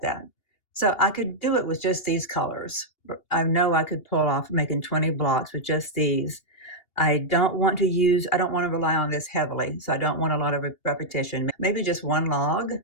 that. So I could do it with just these colors. I know I could pull off making 20 blocks with just these. I don't want to rely on this heavily, so I don't want a lot of repetition. Maybe just one log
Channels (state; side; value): late; right; 2.8 ms